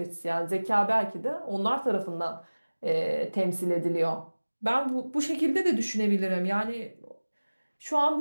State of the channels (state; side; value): inverted; both; correlation -1.00